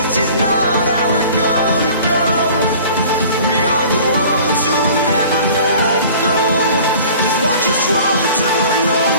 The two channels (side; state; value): both; inverted; correlation -0.46